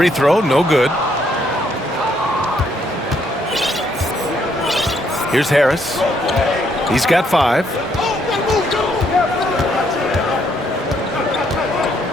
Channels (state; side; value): normal; both; correlation 0.71